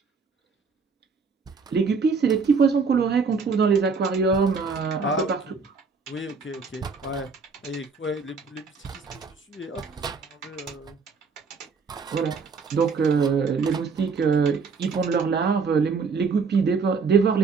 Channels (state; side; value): quieter; left; 5.0 dB